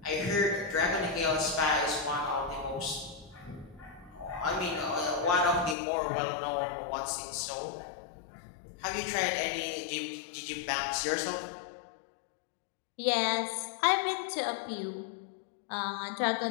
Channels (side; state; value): right; drops out; at 5.8 s